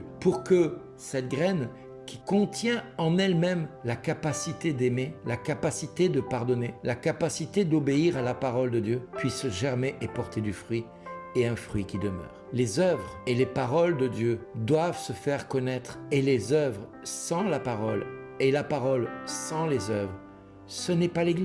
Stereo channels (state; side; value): identical; both; correlation 1.00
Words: pour que cette graine qui contient en elle-même la capacité d'aimer, la capacité de pardonner, la capacité d'obéir à la parole de Dieu, puisse germer et porter du fruit, et un fruit qui demeure. Les œuvres et les paroles de Dieu doivent se faire connaître, et les œuvres sans la parole, et la parole sans les œuvres, ce n'est pas